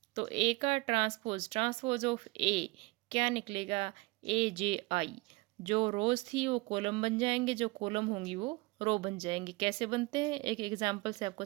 तो ए का ट्रांसपोज ऑफ ए क्या निकलेगा? AJI। जो रोज थी वो कॉलम बन जाएंगे, जो कॉलम होंगी वो रो बन जाएंगे। कैसे बनते हैं एक एग्जांपल से आपको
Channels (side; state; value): left; quieter; 23.7 dB